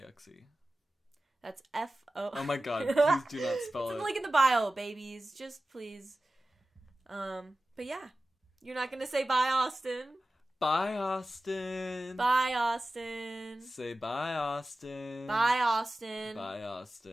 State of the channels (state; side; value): normal; both; correlation 0.95